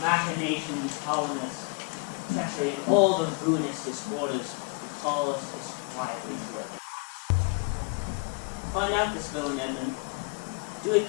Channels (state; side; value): quieter; right; 32.7 dB